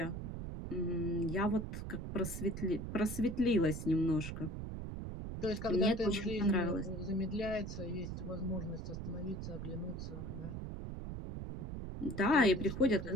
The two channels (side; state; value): right; noise; rumble, 6 dB below the sound